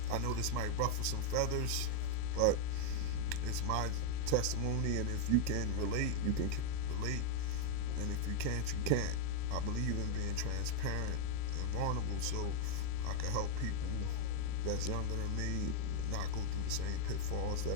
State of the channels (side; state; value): both; different; correlation 0.00